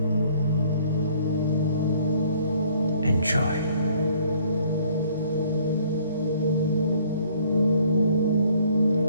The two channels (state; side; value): inverted; both; correlation -0.60